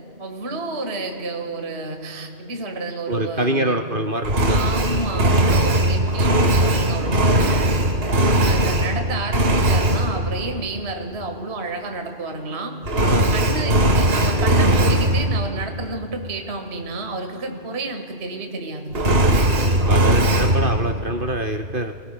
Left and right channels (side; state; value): left; late; 2.8 ms